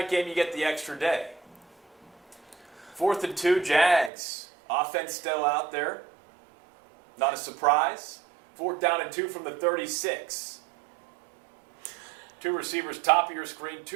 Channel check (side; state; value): left; drops out; at 4.1 s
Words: game, you get the extra day. 4th and 2, Jags. Offense still out there. Not a surprise. 4th down and 2 from the 36. 2 receivers top of your screen,